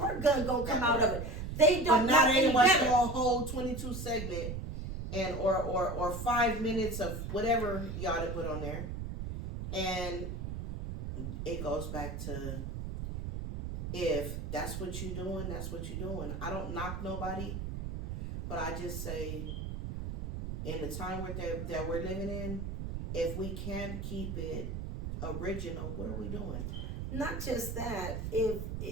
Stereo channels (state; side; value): noise; right; rumble, 5 dB below the sound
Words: gun gonna come out of it. They but don't know not any anyone better. saw a whole 22 segment and or 5 minutes of whatever y'all to put on there. And it goes back to if that's what you're doing, that's what you're doing. I don't knock nobody, but I just say in the time that we're living in, if we can't keep it original, what are we doing? Not just that, if